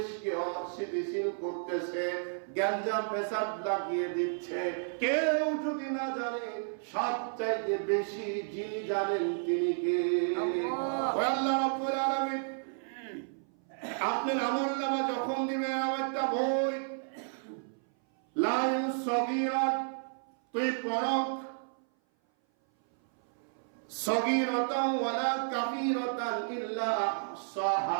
অস্থিতিশীল করতেছে, গ্যাঞ্জাম ফ্যাসাদ লাগিয়ে দিচ্ছে, কেউ যদি না জানে, সবচাইতে বেশি যিনি জানেন তিনি কে? আল্লাহ রাব্বুল আলামিন। আপনার আমলনামা যখন দিবেন, আমার একটা বই লা সগীরাত, তুই পড়ো, সগীরাতান ওয়ালা কাবীরাতান ইল্লা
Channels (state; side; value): silent; left; 56 dB below the other